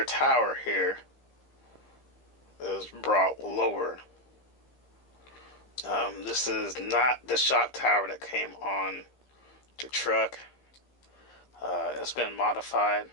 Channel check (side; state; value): right; late; 15 ms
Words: tower here is brought lower. This is not the shock tower that came on the truck. It's been modified,